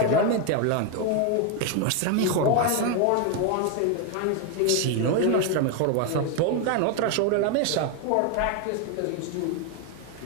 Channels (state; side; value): different; both; correlation 0.01